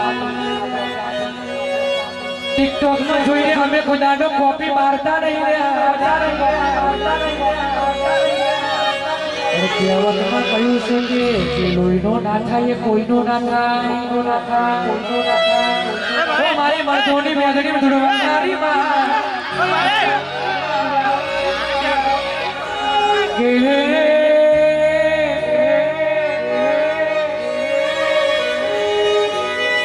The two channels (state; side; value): identical; both; correlation 1.00